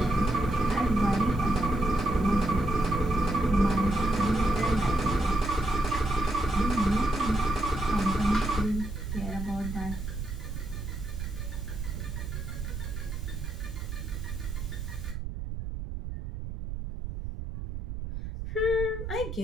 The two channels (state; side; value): noise; right; rumble, 6 dB below the sound